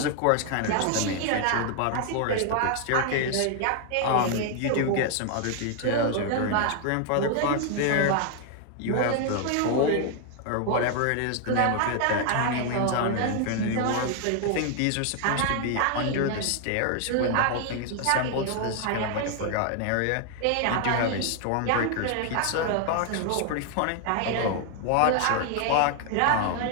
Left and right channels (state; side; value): different; both; correlation 0.00